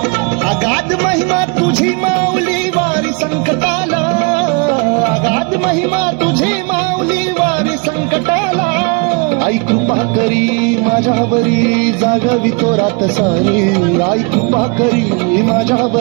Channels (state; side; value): quieter; left; 31.6 dB